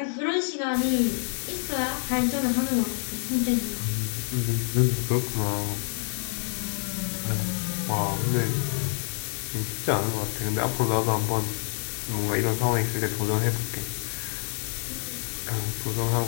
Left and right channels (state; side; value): silent; right; 56 dB below the other